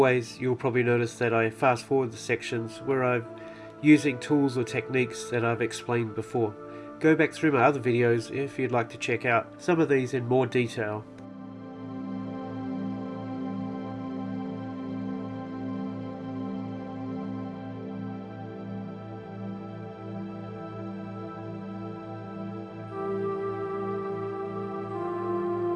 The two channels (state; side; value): identical; both; correlation 1.00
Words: you'll probably notice that I fast forward the sections where I'm using tools or techniques that I've explained before. Go back through my other videos if you'd like to check out some of these in more detail.